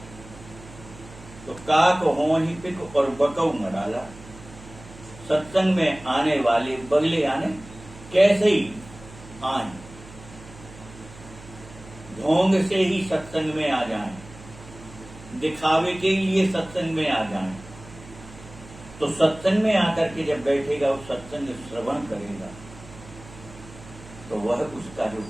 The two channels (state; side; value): noise; right; hum, 18 dB below the sound